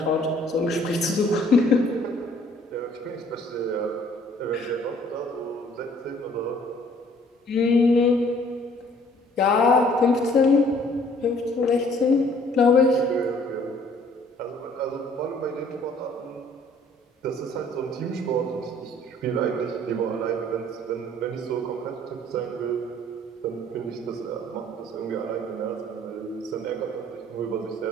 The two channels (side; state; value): both; normal; correlation 0.58